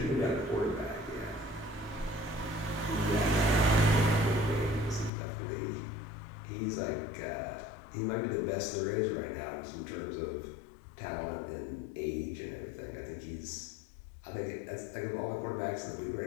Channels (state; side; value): drops out; right; at 5.1 s